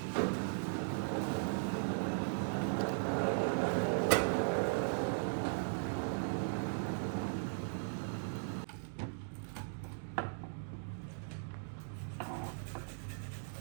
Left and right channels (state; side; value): silent; left; digital silence